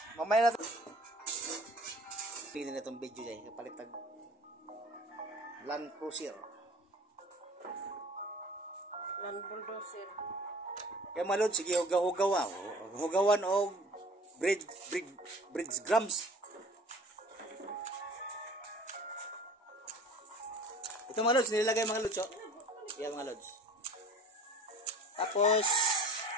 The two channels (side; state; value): both; normal; correlation 0.46